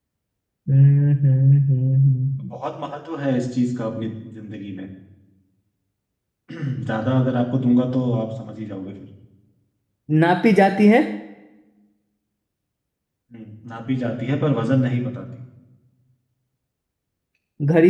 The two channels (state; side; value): identical; both; correlation 1.00